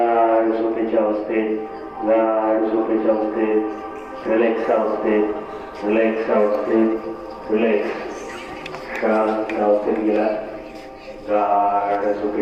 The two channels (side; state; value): both; identical; correlation 1.00